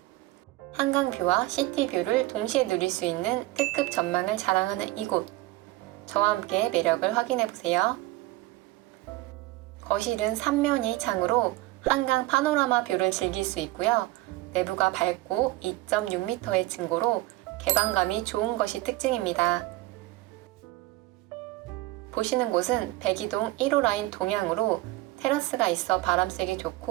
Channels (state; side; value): quieter; left; 18.7 dB